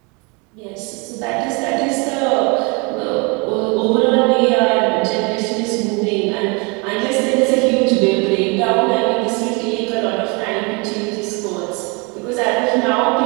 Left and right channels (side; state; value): left; quieter; 30.5 dB